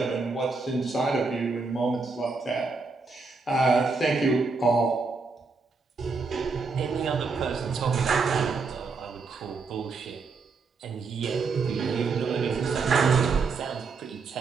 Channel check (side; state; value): left; quieter; 4.4 dB